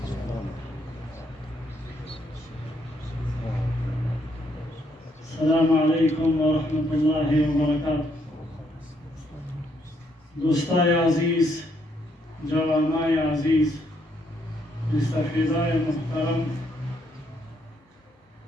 السلام عليكم ورحمة الله وبركاته دوستای عزیز، جوانای عزیز، مستفیدای محترم،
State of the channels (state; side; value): normal; both; correlation 0.73